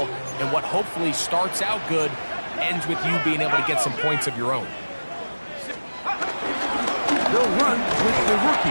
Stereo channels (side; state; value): both; inverted; correlation -1.00